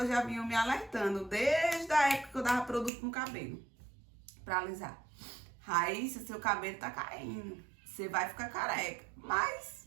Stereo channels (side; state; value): left; drops out; at 2.9 s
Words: já vinham me alertando desde a época que eu dava produto no cabelo pra alisar. Raíssa, seu cabelo tá caindo, você vai ficar careca.